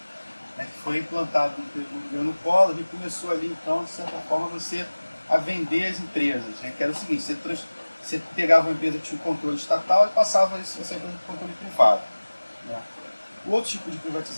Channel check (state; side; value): inverted; both; correlation -1.00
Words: né, que foi implantado no governo Collor e começou ali, então, de certa forma, você a vender as empresas. Né, que era o seguinte, você pegava uma empresa que tinha um controle estatal e passava isso para o controle privado. Né. O outro tipo de